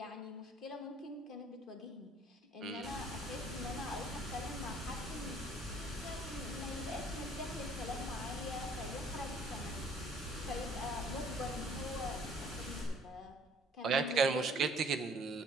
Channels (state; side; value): normal; both; correlation 0.57